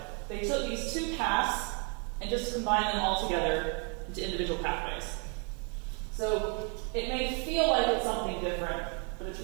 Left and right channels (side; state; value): left; quieter; 36.8 dB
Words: They took these two paths and just combined them all together into individual pathways. So it may feel like it's something different, but it's